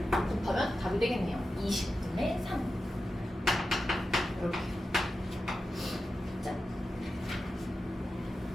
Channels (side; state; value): both; normal; correlation 0.91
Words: 곱하면 답이 되겠네요. 20분의 3. 이렇게. 자.